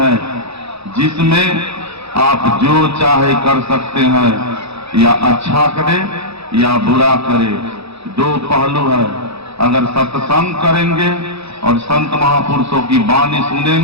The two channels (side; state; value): left; late; 0.78 ms